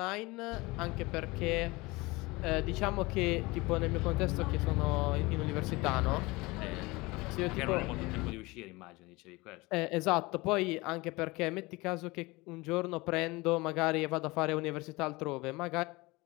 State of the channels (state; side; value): quieter; right; 23.0 dB